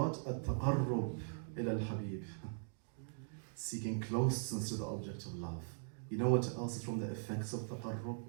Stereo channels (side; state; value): left; silent; digital silence